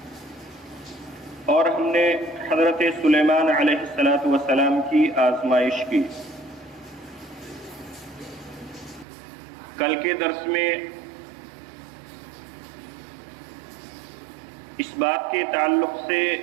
اور ہم نے حضرت سلیمان علیہ السلام کی آزمائش کی. کل کے درس میں اس بات کے تعلق سے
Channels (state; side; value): drops out; left; at 9.1 s